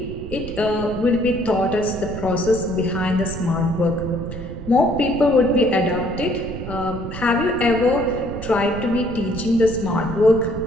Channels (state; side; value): noise; right; rumble, 10 dB below the sound